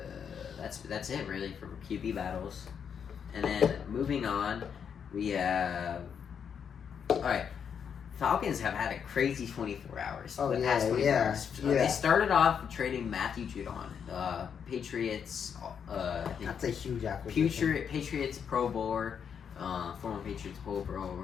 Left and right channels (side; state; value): right; quieter; 7.4 dB